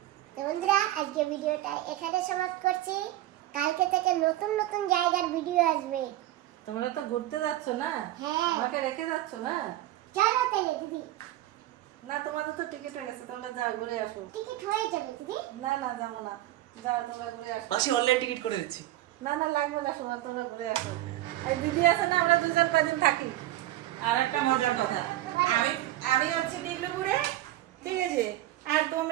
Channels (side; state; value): left; quieter; 15.1 dB